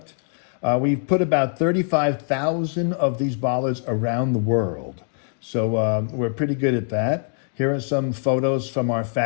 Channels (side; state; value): right; silent; digital silence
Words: We've put about 35,000 of these bollards around the world. So we're pretty good at that. Here are some photos from our